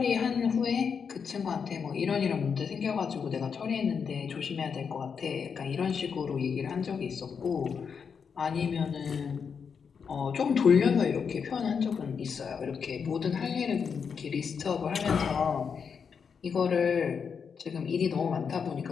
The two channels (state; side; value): quieter; right; 6.3 dB